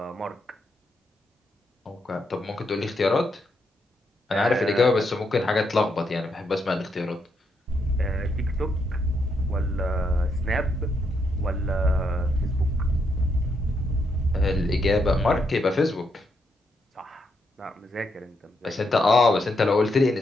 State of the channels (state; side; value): normal; both; correlation 0.78